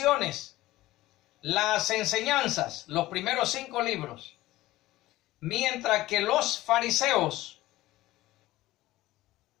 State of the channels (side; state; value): right; quieter; 16.8 dB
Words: las enseñanzas, los primeros 5 libros. Mientras que los fariseos